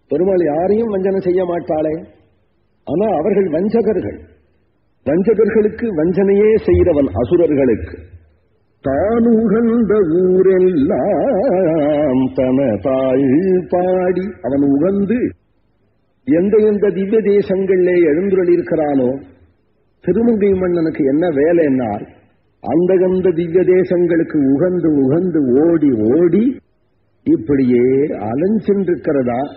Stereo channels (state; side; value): identical; both; correlation 1.00